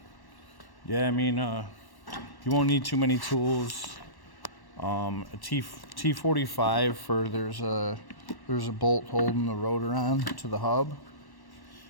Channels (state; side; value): late; right; 1.1 ms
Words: yeah, I mean, you won't need too many tools. A T45 for there's a bolt holding the rotor on to the hub.